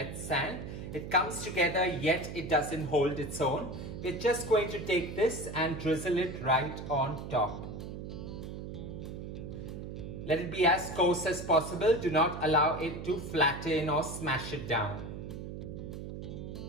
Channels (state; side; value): noise; right; hum, 8 dB below the sound